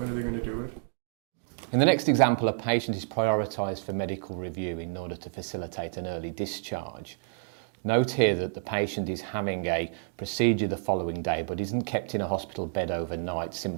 going to do it? In the next example, a patient is prioritised for medical review in order to facilitate an early discharge. Note here that the patient is having a procedure the following day but isn't kept in a hospital bed overnight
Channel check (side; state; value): left; silent; digital silence